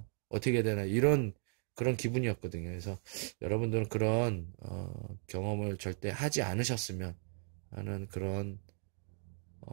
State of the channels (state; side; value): silent; left; 54 dB below the other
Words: 어떻게 해야 되나, 그런 기분이었거든요. 그래서 여러분들은 그런 경험을 절대 하지 않으셨으면 하는 그런